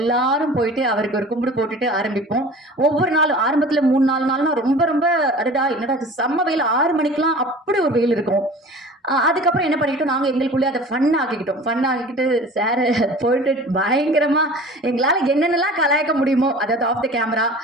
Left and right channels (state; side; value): normal; both; correlation 0.42